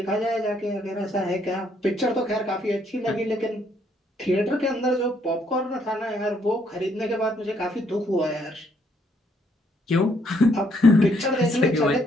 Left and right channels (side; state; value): both; normal; correlation 0.70